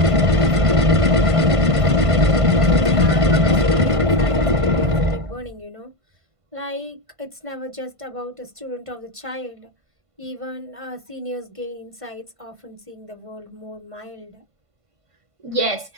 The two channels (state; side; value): late; left; 1.5 ms